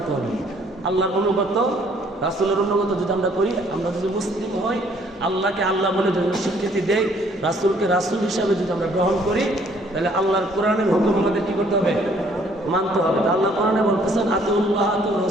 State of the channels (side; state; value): both; normal; correlation 0.62